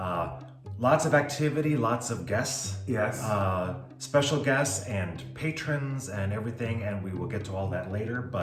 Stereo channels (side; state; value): both; identical; correlation 1.00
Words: Lots of activity, lots of guests. Yes. Special guests and patrons and everything, and we will get to all that later.